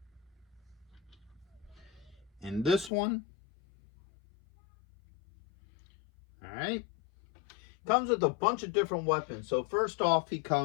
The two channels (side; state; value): right; drops out; at 2.9 s